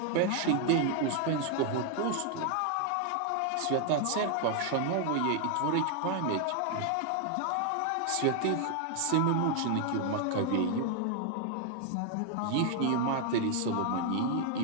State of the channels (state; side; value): different; both; correlation 0.00